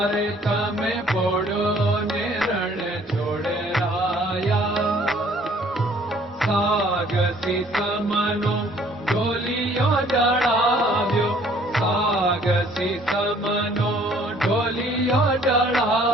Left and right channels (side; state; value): both; normal; correlation 0.58